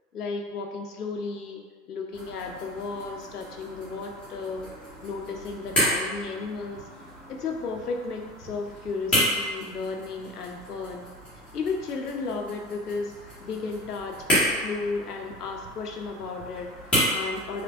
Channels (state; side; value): normal; both; correlation 0.34